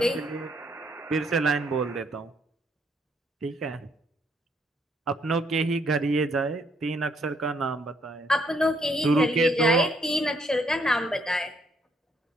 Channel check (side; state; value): both; normal; correlation 0.70